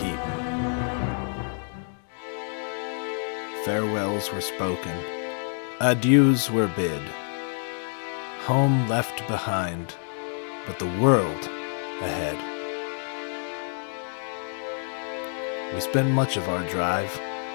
Farewells were spoken. Adieus were bid. Home left behind, but the world ahead. We spent much of our drive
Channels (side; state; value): right; silent; 60 dB below the other